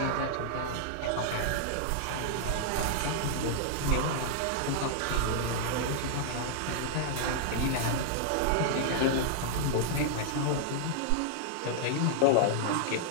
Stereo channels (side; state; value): both; different; correlation -0.01